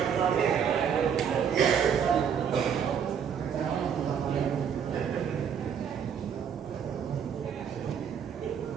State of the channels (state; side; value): quieter; left; 7.8 dB